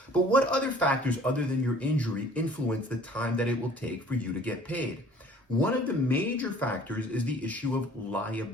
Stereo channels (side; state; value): both; normal; correlation 0.51